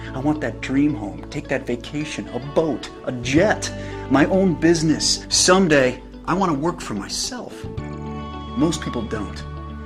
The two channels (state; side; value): identical; both; correlation 1.00